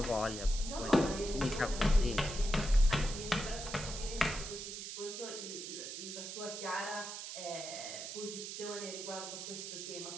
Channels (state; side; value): noise; right; hiss, 7 dB below the sound